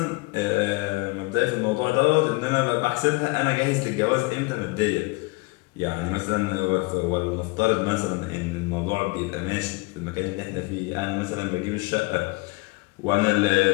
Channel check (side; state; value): right; quieter; 25.1 dB